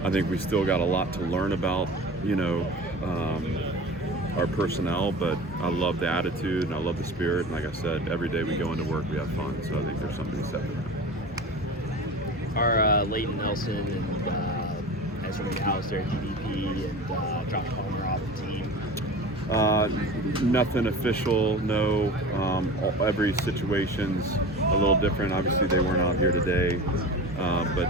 I think we still got a lot to learn about, you know, our personnel, but I love the attitude and I love the spirit. And like I said, every day we go into work, we have fun. So I think there's something to be said for that. Are Leighton Nelson and Ezra McAllister, DDP, and Josh Palmer off the team? Nothing official, no. Every situation's a little different. Obviously, they weren't out here today,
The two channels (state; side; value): normal; both; correlation 0.34